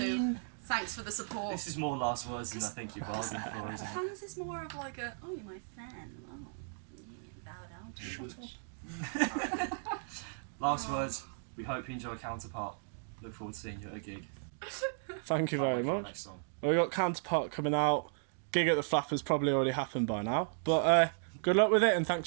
Thanks for the support. This is more last words than I think you bargained for, isn't it? Fans is more of like a, oh, you're my fan. Oh, yeah, bow down to me. Last words. We hope you enjoy Counterpart. Look forward to seeing you at a gig. Thank you Can't very wait for our much. next song. Well, we got Counterpart coming out. Gig at the Flappers probably already happened by now. But good luck with it and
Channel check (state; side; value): silent; left; digital silence